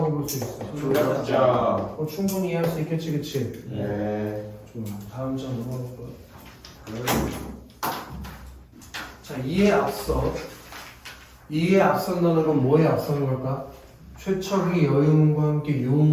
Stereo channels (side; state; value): both; identical; correlation 1.00